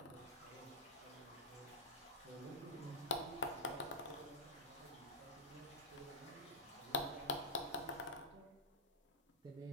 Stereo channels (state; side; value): normal; both; correlation -0.13